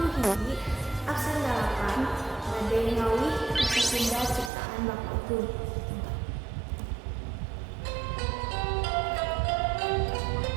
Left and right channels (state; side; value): drops out; left; at 4.5 s